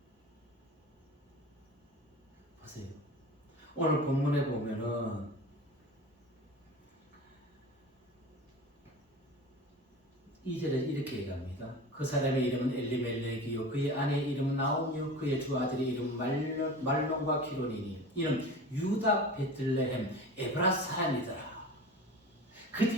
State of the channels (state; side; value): normal; both; correlation 0.35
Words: 보세요. 오늘 본문에 보면은 이절에 이렇게 얘기합니다. 그 사람의 이름은 엘리멜렉이요 그의 아내의 이름은 나오미요 그의 두 아들의 이름은 말론과 기론이니 이는 유다 베들레헴 에브라 사람이더라.